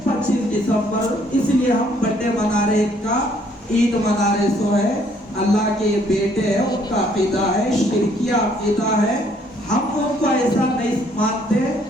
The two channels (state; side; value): normal; both; correlation 0.64